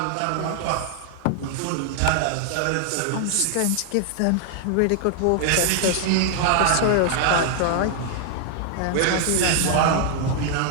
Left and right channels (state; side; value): different; both; correlation 0.00